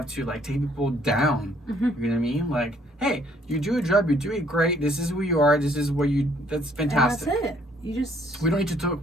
to like take people down? You know what I mean? Like, hey, you do a job, you do it great. This is who you are. This is what you. That's fantastic. And that's it. You just. We don't need to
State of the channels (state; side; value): normal; both; correlation 0.64